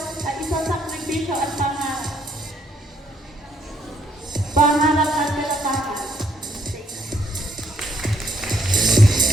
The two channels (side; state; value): both; normal; correlation 0.70